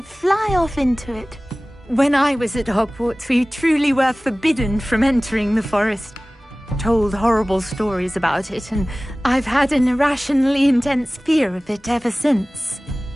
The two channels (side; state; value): both; normal; correlation 0.98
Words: fly off into it. When I was at Hogwarts, we truly were forbidden from entering the forest. Told horrible stories about it, and I've had an irrationally intense fear of it ever since.